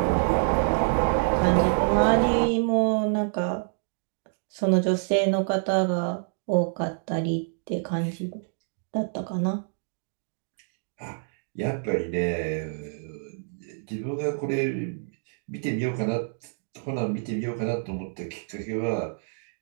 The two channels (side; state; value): left; silent; digital silence